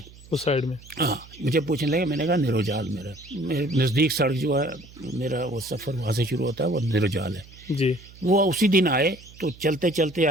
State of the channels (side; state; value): right; noise; hum, 21 dB below the sound